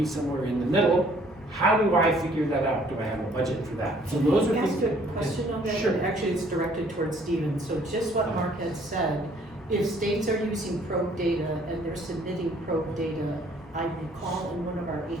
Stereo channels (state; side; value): normal; both; correlation 0.60